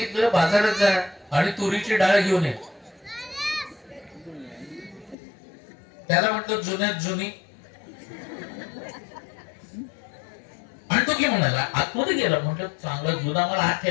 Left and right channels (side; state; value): right; drops out; at 5.2 s